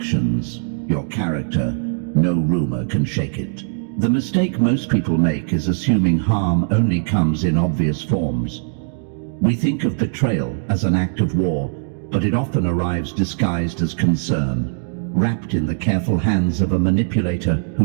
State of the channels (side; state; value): left; silent; digital silence